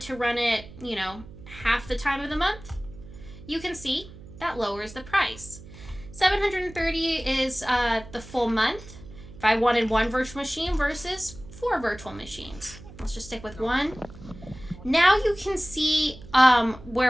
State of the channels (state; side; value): noise; right; hum, 17 dB below the sound